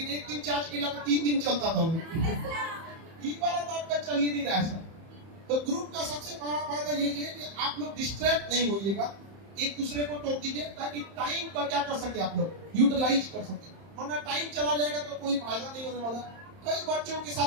एक दिन चार्ज किया तो 3 दिन चलता था वो। ये वाला तो आपका चल ही नहीं रहा है। तो ग्रुप का सबसे बड़ा फायदा यही है कि आप लोग डिस्ट्रैक्ट नहीं होइएगा, एक दूसरे को टोक दीजिए, ताकि टाइम का क्या कर सके आप लोग, यूटिलाइज कर सके। वरना टाइम चला जाएगा तो कोई फायदा नहीं होने वाला। कई बच्चों के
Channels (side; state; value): left; late; 31 ms